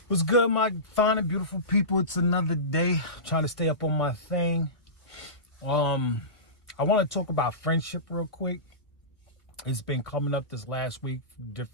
What's good, my fine and beautiful people? It's another day. I'm trying to stay up on my thing. I want to talk about friendship real quick. It's been coming up this last week,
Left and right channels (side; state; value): right; late; 1.5 ms